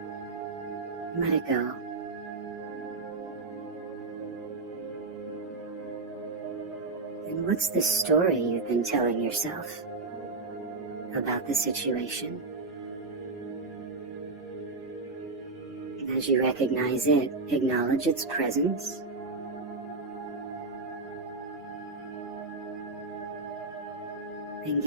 Let it go. And what's the story you've been telling yourself about the situation? As you recognize it, acknowledge its presence. And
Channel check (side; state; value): left; quieter; 3.6 dB